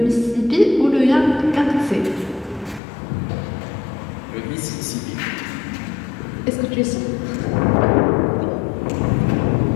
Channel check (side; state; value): right; drops out; at 2.8 s